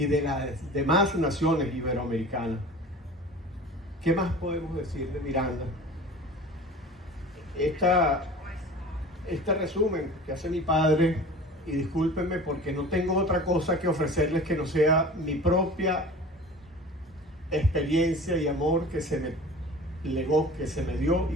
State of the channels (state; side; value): normal; both; correlation 0.40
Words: de las demás naciones iberoamericanas. ¿Qué más podemos decir de Miranda? Este resumen que hace mi padre, y discúlpenme porque no tengo otra cosa que ofrecerles que no sea mi propia experiencia y amor que se me legó, que se me dio y